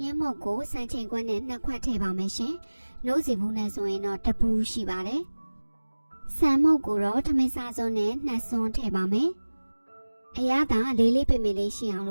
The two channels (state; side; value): inverted; both; correlation -1.00